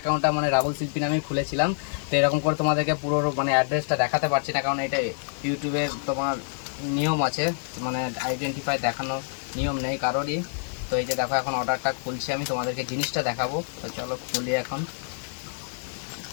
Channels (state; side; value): silent; right; digital silence